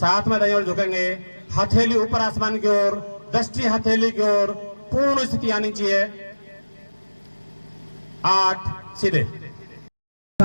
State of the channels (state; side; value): inverted; both; correlation -1.00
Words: में दाईं ओर झुकेंगे। हथेली ऊपर आसमान की ओर। दृष्टि हथेली की ओर। पूर्ण स्थिति आनी चाहिए। 8 सीधे।